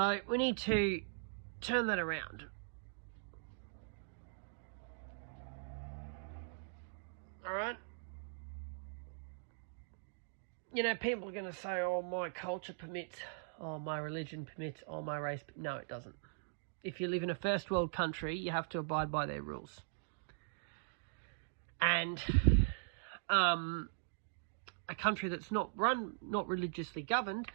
we need to turn that around. Alright? You know, people are going to say, oh, my culture permits, oh, my religion permits, oh, my race. No, it doesn't. If you live in a first world country, you have to abide by their rules. And a country that's not religiously governed,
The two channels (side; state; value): left; silent; digital silence